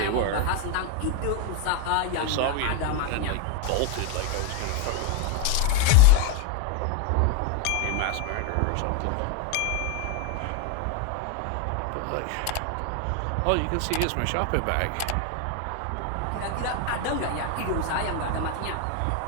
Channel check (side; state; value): both; different; correlation 0.01